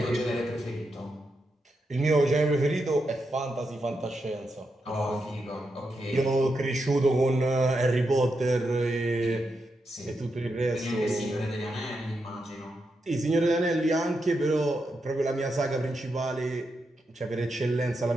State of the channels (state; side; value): normal; both; correlation 0.85